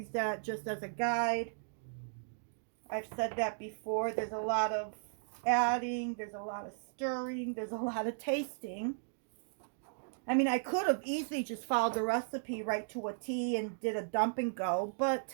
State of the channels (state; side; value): silent; left; digital silence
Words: that just as a guide. I've said that before. There's a lot of adding, there's a lot of stirring, there's a lot of tasting. I mean, I could have easily just followed the recipe right to a T and did a dump and go. But